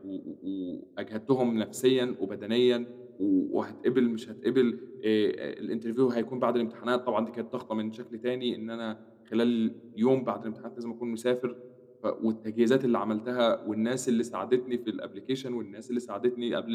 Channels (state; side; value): identical; both; correlation 1.00